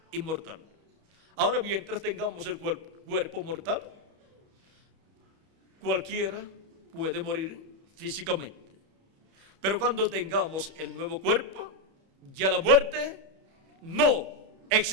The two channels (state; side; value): late; left; 31 ms